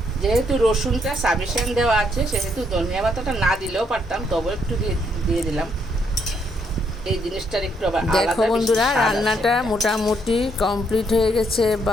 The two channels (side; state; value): both; normal; correlation 0.73